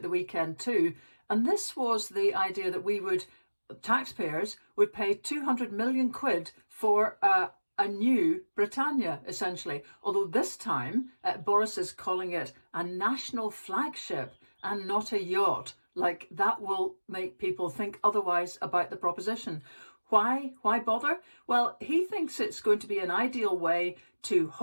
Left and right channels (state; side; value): inverted; both; correlation -1.00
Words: the weekend too. And this was the idea that taxpayers would pay 200 million quid for a new Britannia, essentially. Although this time, Boris is calling it a national flagship and not a yacht. Like, that will make people think otherwise about the proposition. Why bother? Well, he thinks it's going to be an ideal way to